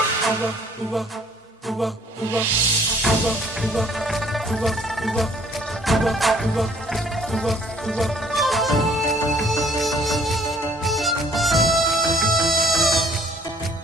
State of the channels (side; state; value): both; normal; correlation 0.59